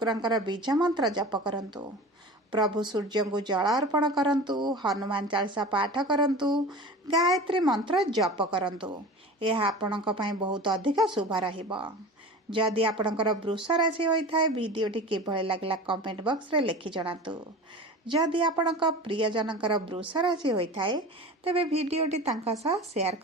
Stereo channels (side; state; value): both; normal; correlation 0.35